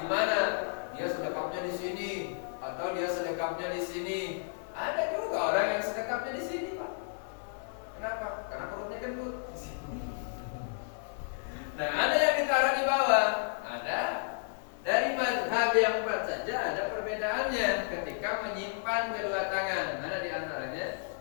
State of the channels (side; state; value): right; silent; digital silence